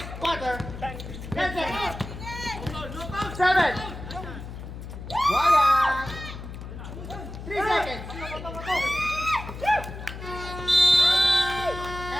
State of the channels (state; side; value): noise; left; hum, 10 dB below the sound